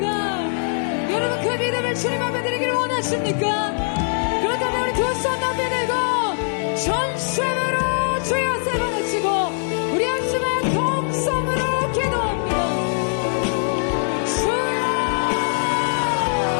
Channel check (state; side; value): silent; right; digital silence